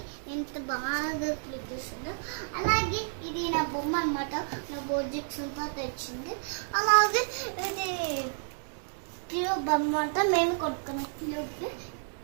ఎంత బాగా క్లిక్ చేస్తుందో. అలాగే ఇది నా బొమ్మ అన్నమాట. నా బోర్జిక్స్ అంతా తెచ్చింది. అలాగే ఇది క్యూబ్ అన్నమాట. మేము కొట్టుకున్నాం క్యూబ్.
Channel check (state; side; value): silent; left; digital silence